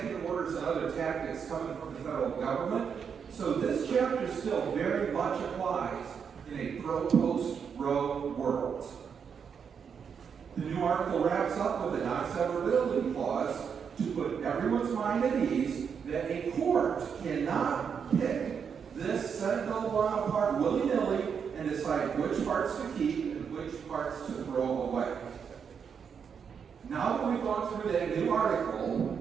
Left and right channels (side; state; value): left; quieter; 6.8 dB